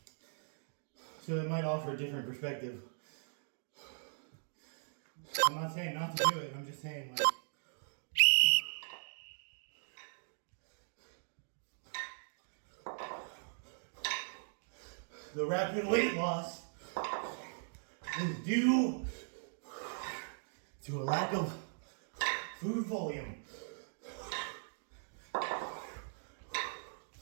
So it might offer a different perspective. I'm not saying not to do it, I'm just saying like the rapid weight loss is due to a lack of food volume.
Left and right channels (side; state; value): left; silent; digital silence